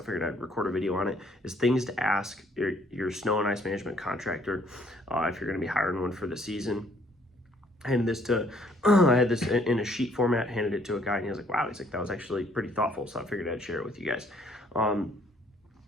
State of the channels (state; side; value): normal; both; correlation 0.64